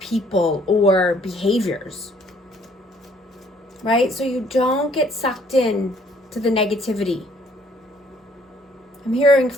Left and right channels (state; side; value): normal; both; correlation 0.62